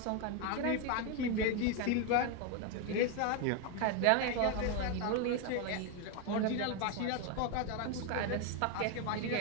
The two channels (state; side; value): different; both; correlation 0.02